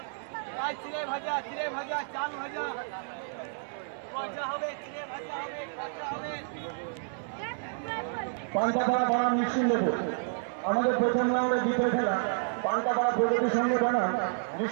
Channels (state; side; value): silent; left; 58 dB below the other